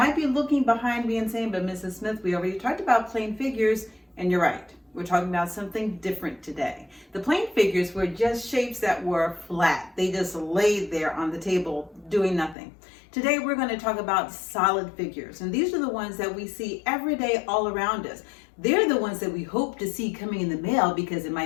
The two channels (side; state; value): right; drops out; at 12.6 s